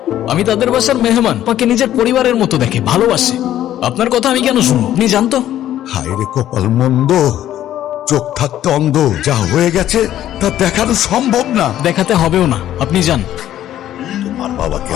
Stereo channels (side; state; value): right; quieter; 12.2 dB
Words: আমি তাদের বাসার মেহমান, আমাকে নিজের পরিবারের মতো দেখে, ভালোবাসে। আপনার কথা আমি কেন শুনবো? আপনি জানতো? হায় রে কপাল মন্দ, চোখ থাকতে অন্ধ। যা হয়ে গেছে তা দেখানো সম্ভব না। দেখাতে হবেও না, আপনি যান। তোমার বাবাকে